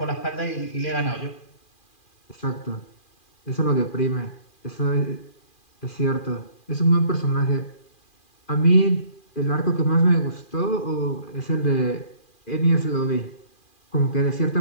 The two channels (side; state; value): right; late; 2.4 ms